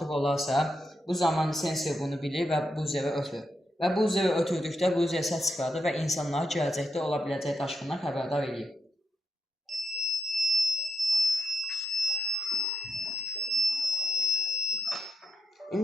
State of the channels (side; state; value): both; normal; correlation 0.83